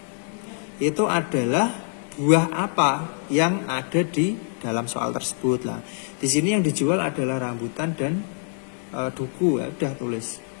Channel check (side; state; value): right; silent; 62 dB below the other